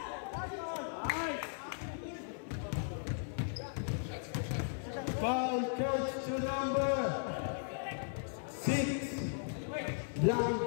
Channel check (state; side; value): silent; right; 53 dB below the other